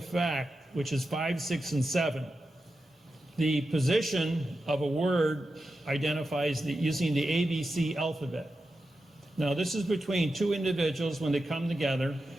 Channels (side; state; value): both; normal; correlation 0.90